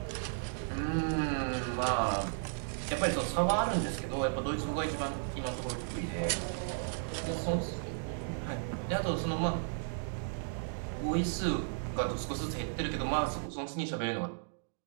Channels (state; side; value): silent; left; digital silence